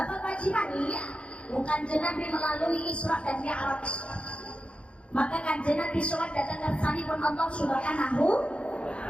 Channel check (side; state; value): right; late; 0.059 ms